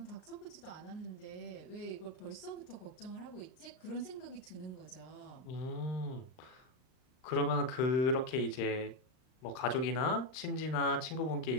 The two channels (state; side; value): late; right; 39 ms